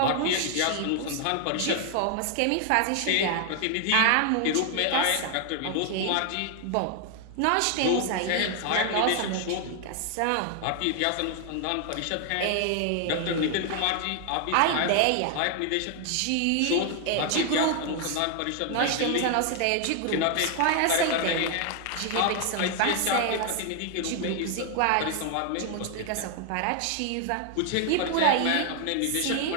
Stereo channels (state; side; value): different; both; correlation 0.00